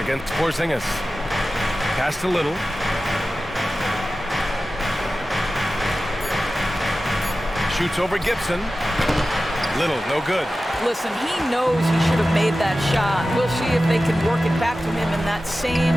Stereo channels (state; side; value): normal; both; correlation 0.94